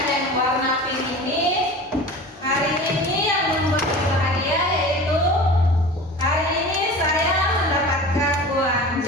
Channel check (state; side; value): normal; both; correlation 0.36